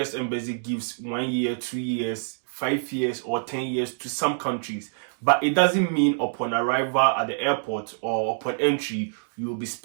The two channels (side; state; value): left; silent; digital silence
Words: Embassy gives 1 year, 2 years, 5 years or 10 years to some countries. But it doesn't mean upon arrival at the airport or upon entry, you will be